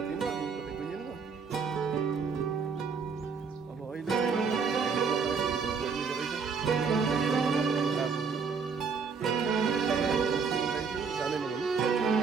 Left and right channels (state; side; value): quieter; left; 5.5 dB